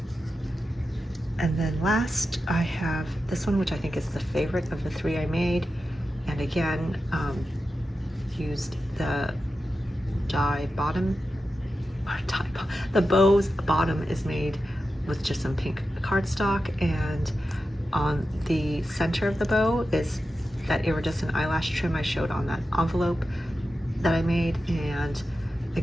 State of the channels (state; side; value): normal; both; correlation 0.91